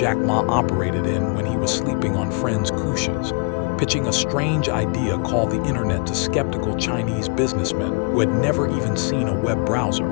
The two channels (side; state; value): right; quieter; 33.7 dB